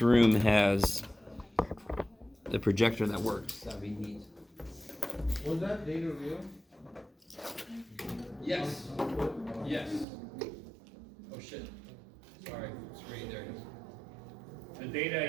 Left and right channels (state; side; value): drops out; left; at 10.1 s